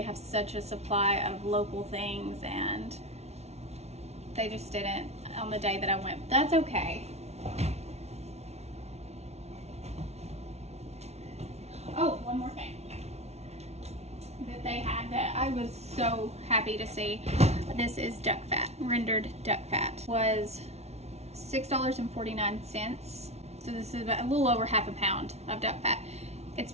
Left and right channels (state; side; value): late; left; 0.31 ms